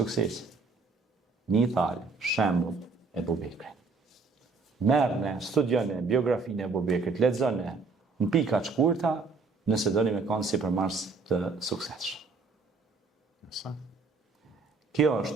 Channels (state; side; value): quieter; left; 4.2 dB